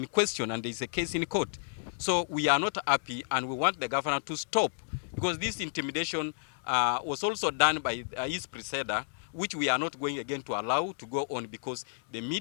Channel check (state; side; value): silent; right; digital silence